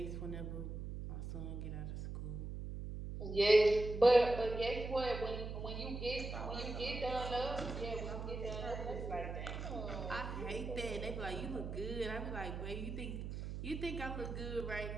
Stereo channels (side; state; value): right; noise; hum, 6 dB below the sound